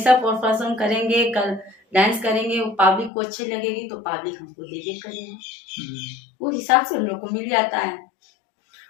परफॉर्म करेंगे, कल डांस करेंगे, वो पब्लिक को अच्छी लगेगी तो पब्लिक हमको दे करेगी, वो हिसाब से हम लोग को मिल जाता है।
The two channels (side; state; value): right; drops out; at 3.1 s